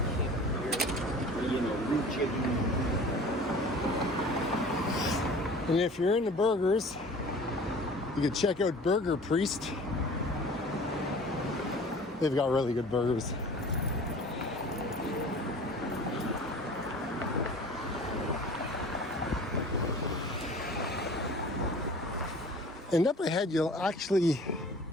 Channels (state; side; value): normal; both; correlation 0.44